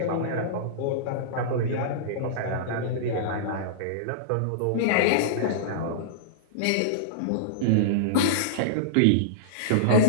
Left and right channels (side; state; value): both; different; correlation -0.03